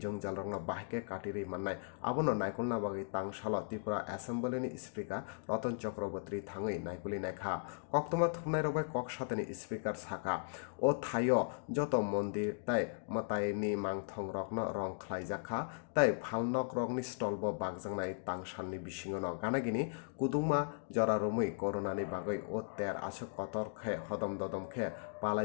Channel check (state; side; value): silent; right; digital silence